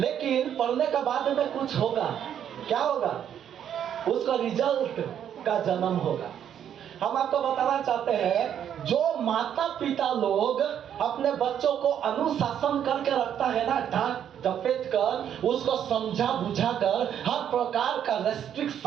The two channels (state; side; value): quieter; left; 9.4 dB